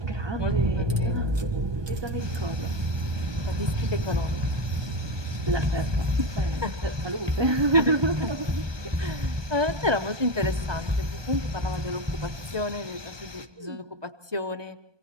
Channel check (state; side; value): late; left; 1.2 ms